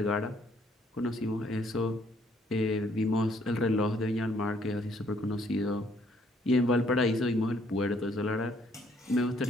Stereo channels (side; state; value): both; normal; correlation 0.66